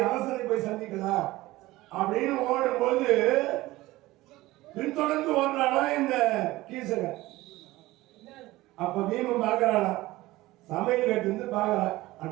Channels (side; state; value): left; quieter; 18.3 dB